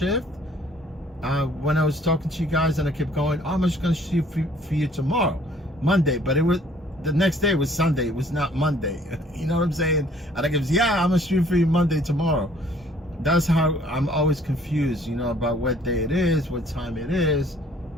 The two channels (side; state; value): both; normal; correlation 0.58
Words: when I was talking to you guys and I kept going, oh, I'm just going to shoot for you tomorrow, Monday. But it was, the next day was Sunday. It was not Monday. You know what I'm saying? And I kept, yeah, I'm going to shoot for you Monday tomorrow. That's how I'm always confused, about what day it is, what time it is,